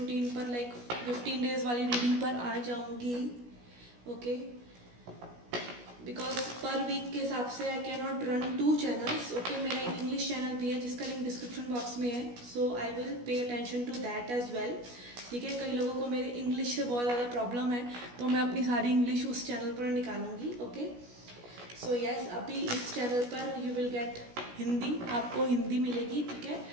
पर 15 डेज वाली रीडिंग पर आ जाऊंगी, ओके। बिकॉज पर वीक के हिसाब से I can not run 2 channels, okay. मेरा एक इंग्लिश चैनल भी है जिसका लिंक डिस्क्रिप्शन बॉक्स में है, so I will pay attention to that as well, ठीक है। कई लोगों को मेरे इंग्लिश से बहुत ज़्यादा प्रॉब्लम है, तो मैं अपनी सारी इंग्लिश उस चैनल पर निकालूंगी, ओके। सो यस, अभी इस चैनल पर यू विल गेट हिंदी, आपको हिंदी मिलेगी, ठीक है।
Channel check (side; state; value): left; late; 16 ms